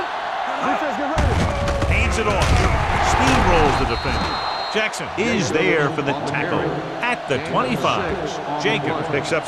Defense, get ready. Hands it off. Steamrolls the defender. Jackson is there for the tackle at the 25. Jacobs picks up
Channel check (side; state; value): both; identical; correlation 1.00